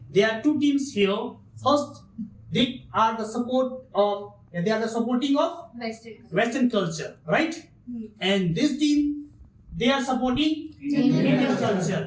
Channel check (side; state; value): both; identical; correlation 1.00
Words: there are two teams here. First, they are the supporting of Western culture, right? And this team, they are supporting Indian